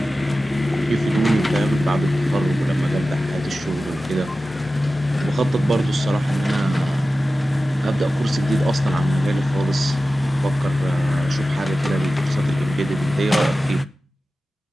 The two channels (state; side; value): normal; both; correlation 0.95